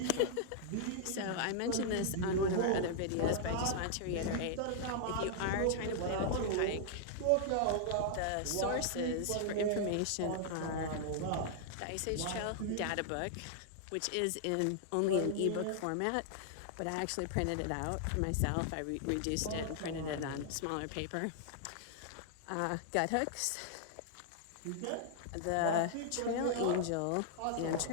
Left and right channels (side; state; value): both; different; correlation -0.01